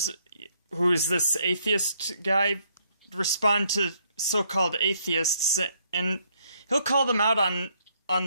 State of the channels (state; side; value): inverted; both; correlation -0.70